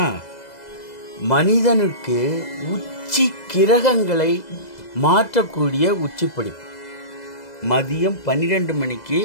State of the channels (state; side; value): late; right; 2.0 ms